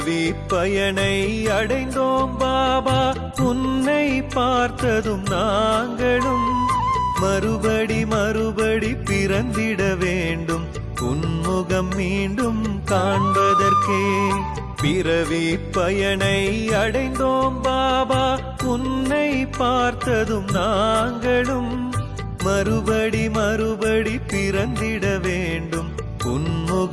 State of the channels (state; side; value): identical; both; correlation 1.00